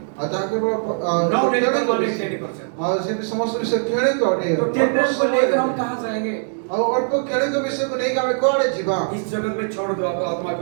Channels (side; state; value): left; silent; digital silence